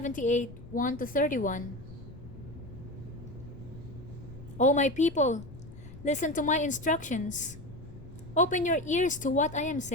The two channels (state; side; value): noise; left; rumble, 15 dB below the sound